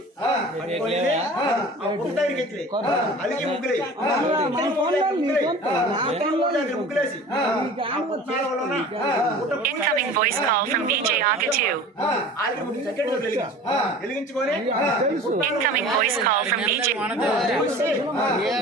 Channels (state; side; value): normal; both; correlation 0.41